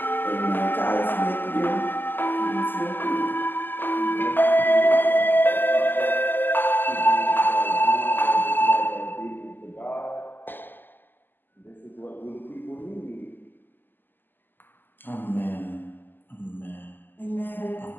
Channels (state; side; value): late; right; 0.091 ms